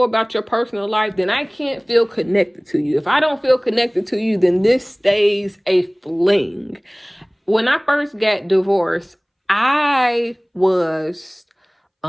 about your personal life, then I can't feel connected to you. If I don't feel connected to you, then this stays a fling. When I first got divorced, I was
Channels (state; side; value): identical; both; correlation 1.00